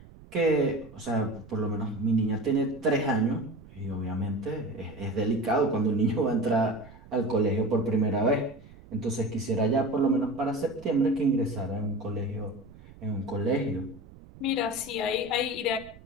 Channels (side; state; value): right; noise; rumble, 21 dB below the sound